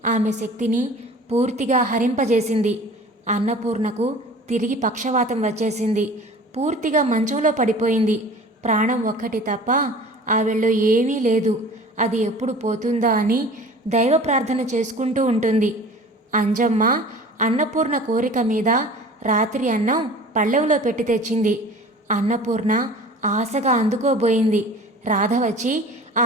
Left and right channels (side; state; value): both; normal; correlation 0.43